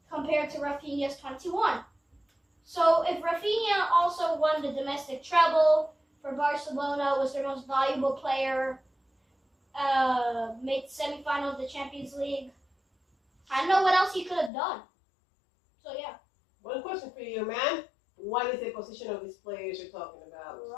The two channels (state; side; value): drops out; right; at 14.5 s